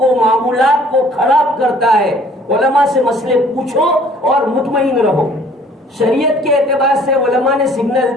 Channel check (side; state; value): both; normal; correlation 0.56